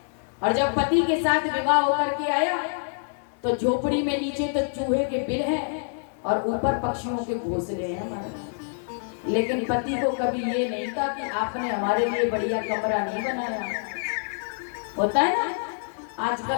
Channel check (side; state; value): right; silent; digital silence